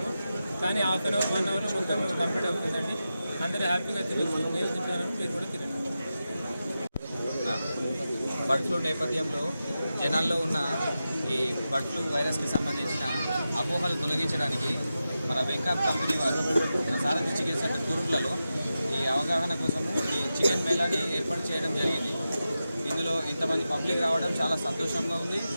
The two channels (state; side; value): inverted; both; correlation -0.92